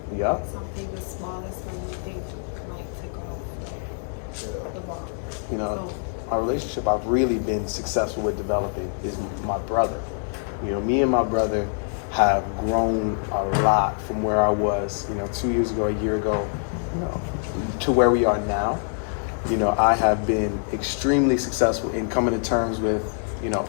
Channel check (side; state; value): right; silent; digital silence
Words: yep. Something the smallest minute thing might tick off, like the bomb. You know, Boom. a relationship I've really been successful with developing is my brother. You know, me and my brother have grown a lot from where I was, you know, 2 years ago, a year ago, you know, to where we are now. You know, I have been extremely successful in coming to terms with, you know,